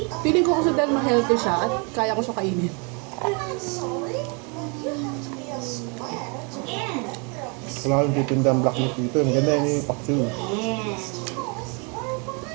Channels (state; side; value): quieter; left; 33.7 dB